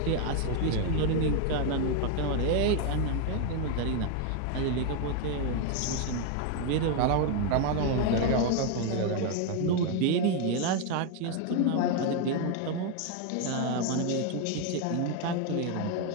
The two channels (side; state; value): both; different; correlation 0.01